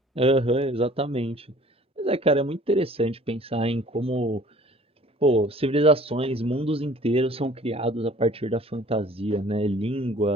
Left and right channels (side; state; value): both; normal; correlation 0.51